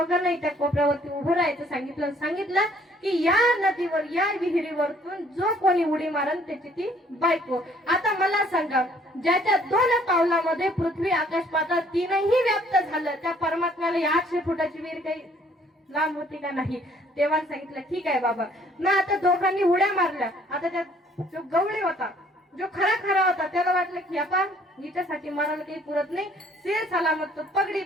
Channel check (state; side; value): normal; both; correlation 0.60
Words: त्या कोपऱ्यावरती उभं राहायचं सांगितलं की या नदीवर, या विहिरीवरतून जो कोणी उडी मारन त्याची ती बायको. आता मला सांगा, ज्याच्या 2 पावलामध्ये पृथ्वी आकाश पाताळ तीनही व्याप्त झालं, त्या परमात्म्याला 800 फुटाची विहीर काही लांब होती का नाही. तेव्हा सांगितलं ठीक आहे बाबा. ना आता दोघांनी उड्या मारल्या. आता त्या जो गवळी होता, जो खरा होता, त्याला वाटलं की आपण हिच्यासाठी मरायला काही पुरत नाही, शेर सलामत तो पगडी